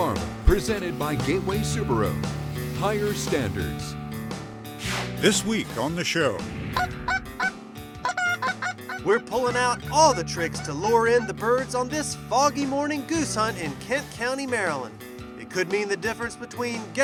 presented by Gateway Subaru. Higher standards. This week on the show, we're pulling out all the tricks to lure in the birds on this foggy morning goose hunt in Kent County, Maryland. It could mean the difference between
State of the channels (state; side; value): identical; both; correlation 1.00